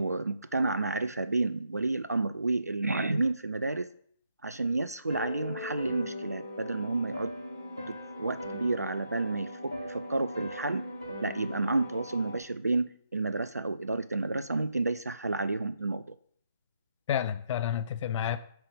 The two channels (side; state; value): both; inverted; correlation -0.78